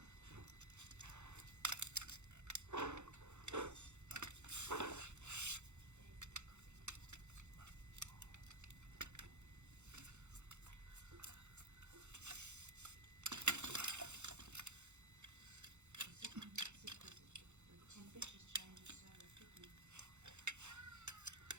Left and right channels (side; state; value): left; late; 0.83 ms